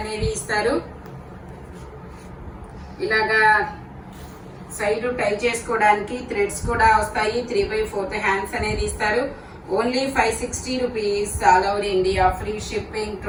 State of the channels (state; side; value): identical; both; correlation 1.00